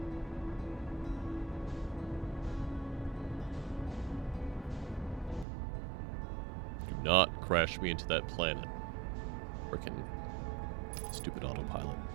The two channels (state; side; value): drops out; left; at 5.5 s